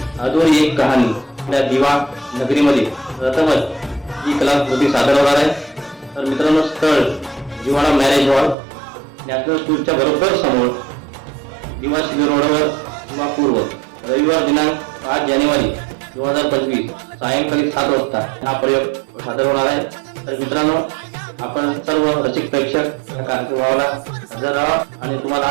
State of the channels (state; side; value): drops out; left; at 8.6 s